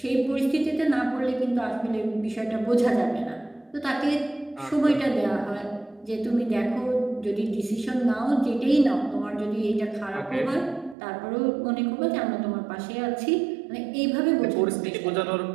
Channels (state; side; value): drops out; left; at 11.0 s